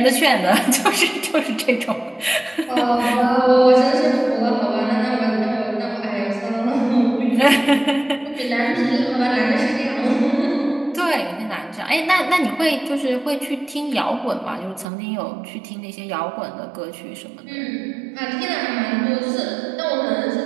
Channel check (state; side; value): drops out; left; at 14.9 s